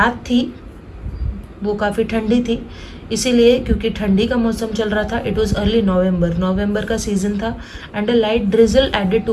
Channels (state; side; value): identical; both; correlation 1.00